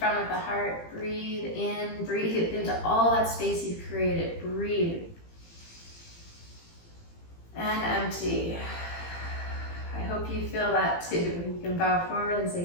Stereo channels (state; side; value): late; right; 18 ms